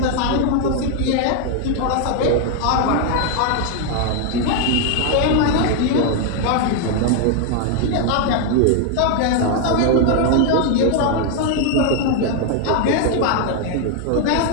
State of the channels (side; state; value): both; different; correlation 0.00